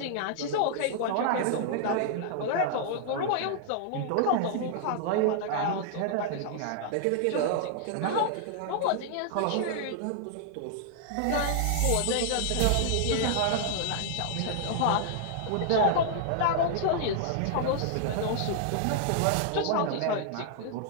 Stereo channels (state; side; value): different; both; correlation -0.01